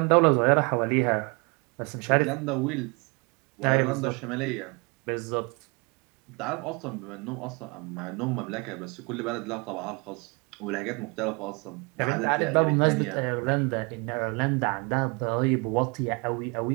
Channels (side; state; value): left; quieter; 30.0 dB